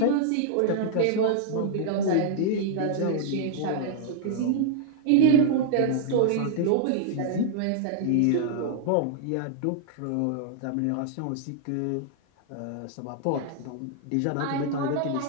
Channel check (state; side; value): different; both; correlation -0.01